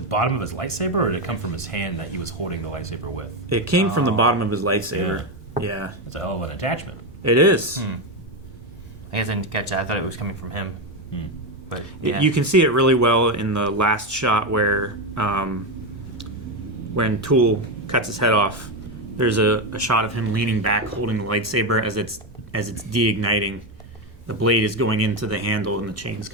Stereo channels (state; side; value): normal; both; correlation 0.11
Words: of his lightsaber, or did it come from his hand that he was holding the lightsaber with? It came from the bottom of his lightsaber. Yeah, it's a hell of an attachment. It is. I guess I didn't catch that. I thought it was coming from him. But you can see it really well in the last shot where when Tool cuts his head off, there's a shot of him leaning back holding the lightsaber as it's deigniting. The blade is going into the handle and the chain's